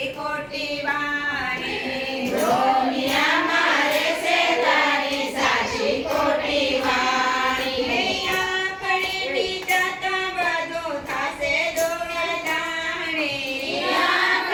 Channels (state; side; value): identical; both; correlation 1.00